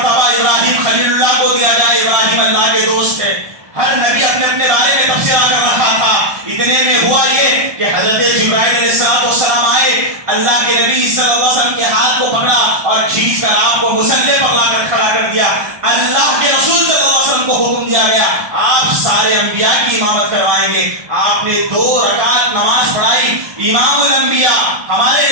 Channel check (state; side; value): late; left; 1.2 ms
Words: ابراہیم خلیل اللہ کو دیا جائے. ابراہیم اللہ کے دوست ہے. ہر نبی اپنے اپنے بارے میں تبصرہ کر رہا تھا. اتنے میں ہوا یہ کہ حضرت جبرائیل علیہ السلام آئے. اللہ کے نبی صلی اللہ علیہ وسلم کے ہاتھ کو پکڑا اور کھینچ کر آپ کو مصلی پر لا کر کھڑا کر دیا. اللہ کے رسول صلی اللہ علیہ وسلم کو حکم دیا گیا آپ سارے انبیاء کی امامت کروائیں گے. آپ نے 2 رکعت نماز پڑھائی. امام الانبیاء ہمارے